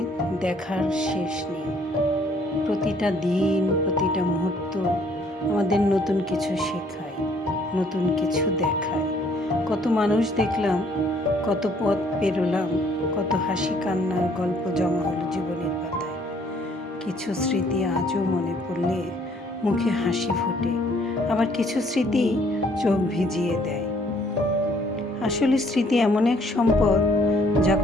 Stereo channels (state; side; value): normal; both; correlation 0.63